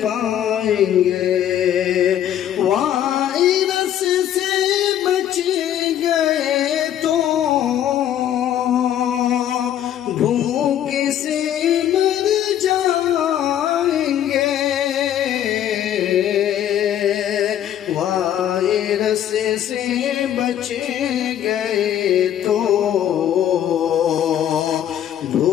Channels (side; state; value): right; quieter; 10.8 dB